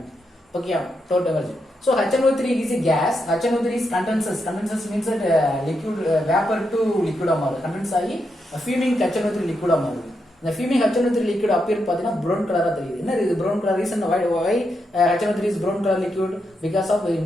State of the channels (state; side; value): normal; both; correlation 0.83